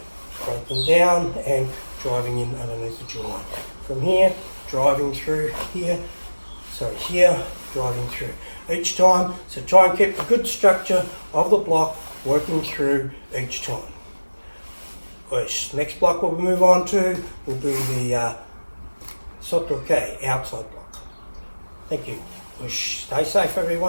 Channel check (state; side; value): inverted; both; correlation -1.00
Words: Breaking down and driving in underneath the jawline. From here, driving through here, here, driving through. Each time, so try and keep the good structure of the block working through each time. Next block we'll move on to will be the Sotoke outside block. Thank you. Stay safe